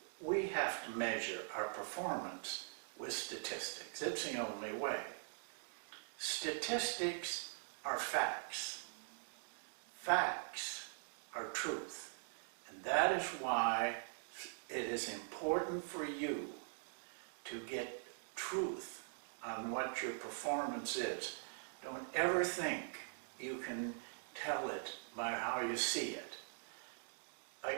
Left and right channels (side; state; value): left; silent; digital silence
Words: We have to measure our performance with statistics. It's the only way. Statistics are facts. Facts are truth. And that is why it is important for you to get truth on what your performance is. Don't ever think you can tell it by how you see it.